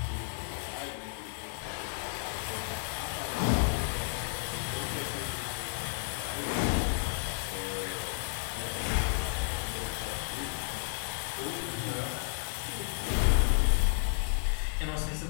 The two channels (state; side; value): silent; right; digital silence